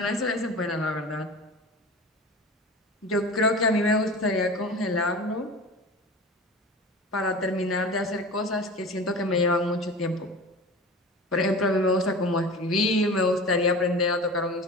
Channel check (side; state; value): both; normal; correlation 0.34